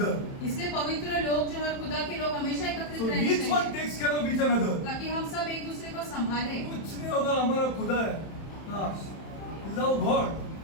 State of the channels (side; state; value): right; late; 31 ms